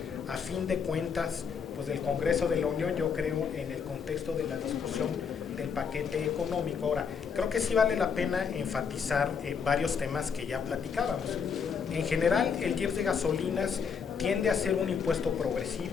a fin de cuentas pues del Congreso de la Unión, yo creo, en el contexto de la discusión del paquete económico. Ahora, creo que sí vale la pena enfatizar varios temas que ya platicábamos. En general, el IEPS de gasolinas tiende a ser un impuesto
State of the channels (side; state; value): right; quieter; 6.4 dB